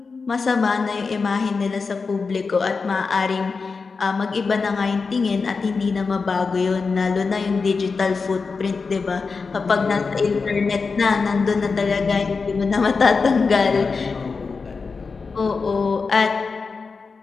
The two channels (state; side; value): quieter; right; 4.7 dB